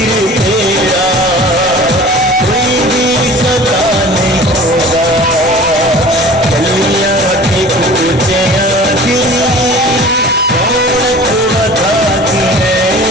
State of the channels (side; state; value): both; normal; correlation 0.43